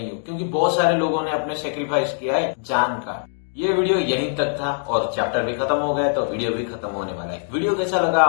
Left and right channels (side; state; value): right; silent; digital silence